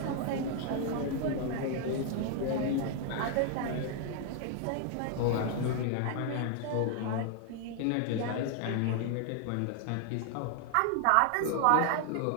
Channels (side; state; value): both; different; correlation 0.00